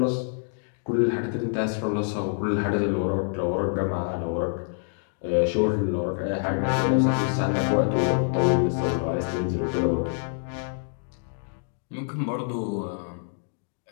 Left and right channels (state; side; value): silent; right; digital silence